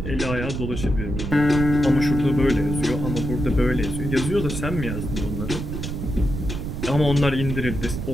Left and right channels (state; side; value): noise; right; rumble, 4 dB below the sound